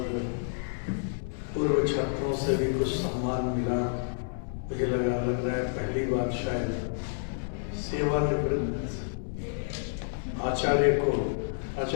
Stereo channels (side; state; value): right; silent; digital silence